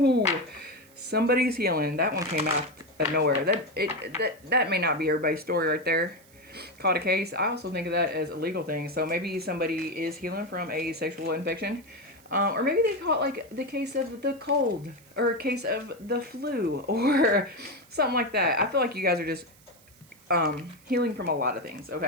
somebody's healing. That one came out of nowhere. That may not be everybody's story right there. Caught a case. I also think of that as a legal thing. So maybe somebody is healing from a sexual infection. Or maybe they caught like the case of the cold or a case of the flu or something like that. I feel like you guys are just healing from a lot of things,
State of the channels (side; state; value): right; noise; hiss, 27 dB below the sound